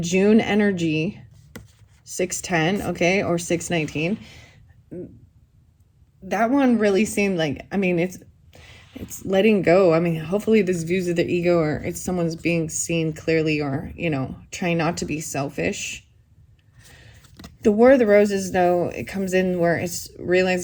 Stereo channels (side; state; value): both; identical; correlation 1.00